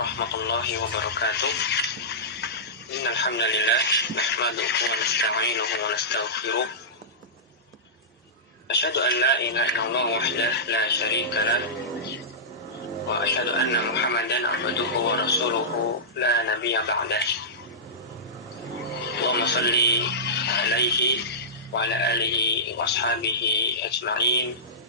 wabarakatuh. Innal hamdalillah nahmaduhu wa nasta'inuhu wa nastaghfiruh. Asyhadu an la ilaha illallah wahdahu la syarika lah wa asyhadu anna Muhammadan abduhu wa rasuluhu la nabiyya ba'dah. Allahumma shalli alaihi wa ala alihi wa ashabihi ajma'in.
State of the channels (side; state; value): both; normal; correlation -0.17